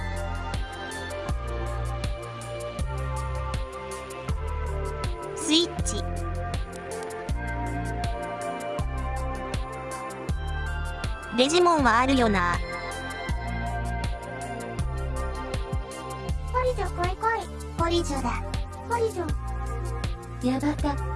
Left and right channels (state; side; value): identical; both; correlation 1.00